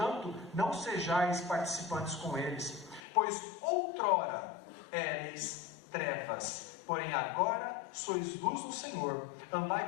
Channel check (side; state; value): right; drops out; at 3.0 s